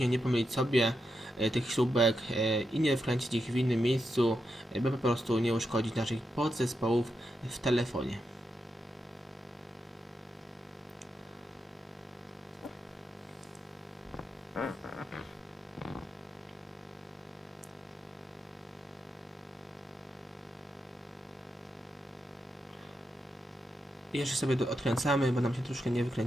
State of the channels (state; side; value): normal; both; correlation 0.86